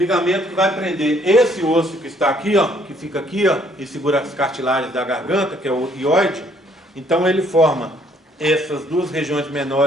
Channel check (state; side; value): normal; both; correlation 0.65